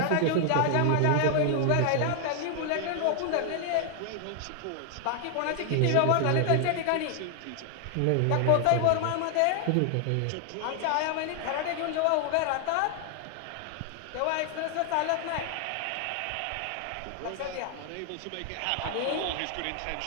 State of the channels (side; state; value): both; different; correlation 0.00